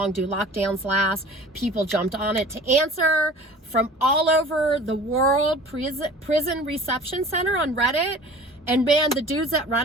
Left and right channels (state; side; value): normal; both; correlation 0.44